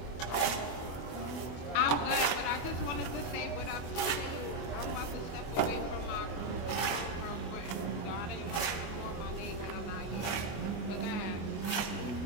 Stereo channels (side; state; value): right; late; 25 ms